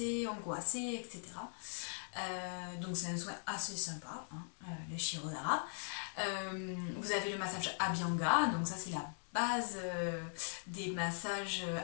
angoissées, etc. Donc c'est un soin assez sympa, hein, le Shirodhara. Vous avez le massage Abhyanga, donc ça c'est la base des massages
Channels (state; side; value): silent; right; 51 dB below the other